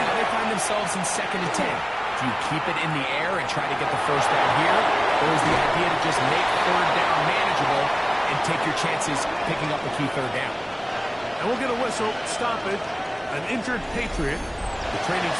they find themselves in 2nd and 10. Do you keep it in the air and try to get the first down here? Or is the idea to just make 3rd down manageable and take your chances picking up a key 3rd down? And we'll get a whistle, stop it. An injured Patriot. The training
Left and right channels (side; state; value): both; identical; correlation 1.00